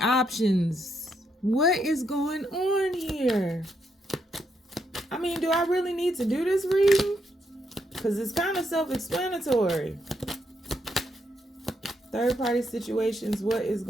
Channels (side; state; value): both; normal; correlation 0.78